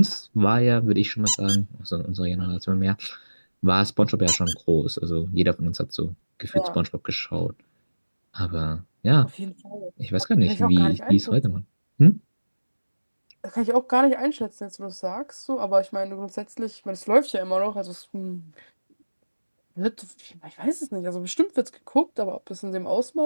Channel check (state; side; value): inverted; both; correlation -1.00